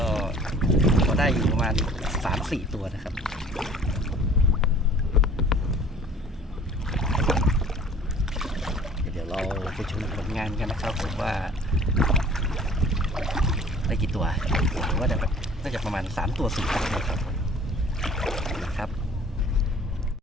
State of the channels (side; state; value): both; normal; correlation 0.50